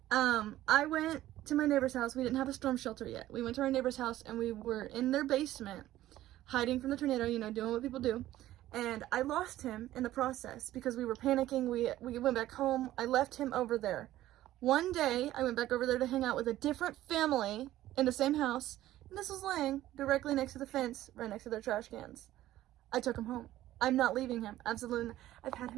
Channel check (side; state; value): left; quieter; 14.4 dB